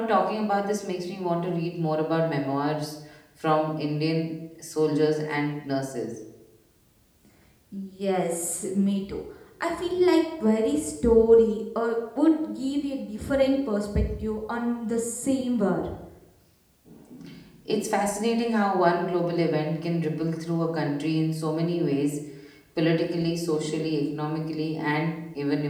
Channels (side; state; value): both; identical; correlation 1.00